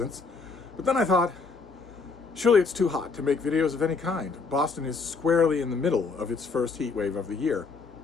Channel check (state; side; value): quieter; right; 4.5 dB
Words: But then I thought, surely it's too hot to make videos of any kind. Boston is squarely in the middle of its first heat wave of the year.